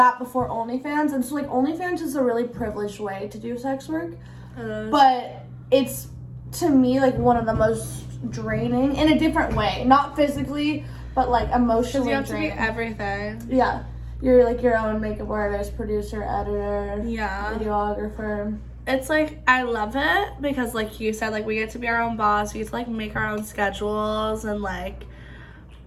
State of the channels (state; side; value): identical; both; correlation 1.00